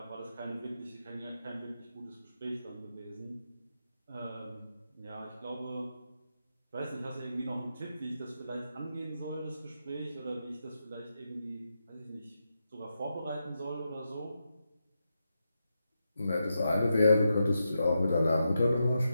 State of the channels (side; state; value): both; inverted; correlation -0.86